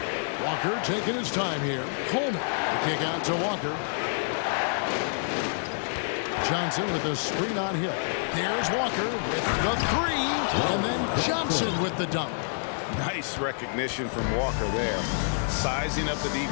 Walker taking his time here. Coleman, the kick out to Walker. Johnson with the screen on Hill. There's Walker with the three, and then Johnson with the dunk. Nice recognition from Walker there. Sizing up the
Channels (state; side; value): silent; right; 60 dB below the other